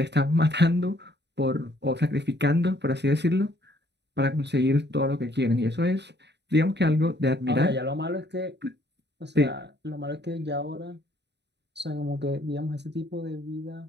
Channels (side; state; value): left; late; 0.50 ms